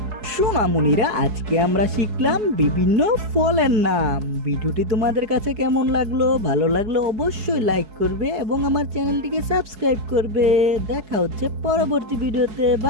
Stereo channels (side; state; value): left; late; 4.7 ms